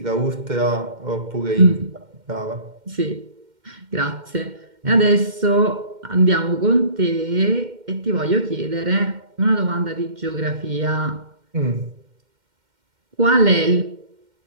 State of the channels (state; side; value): late; left; 2.1 ms